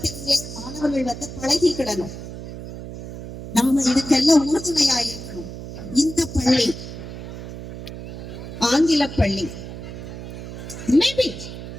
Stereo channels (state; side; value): noise; right; hum, 10 dB below the sound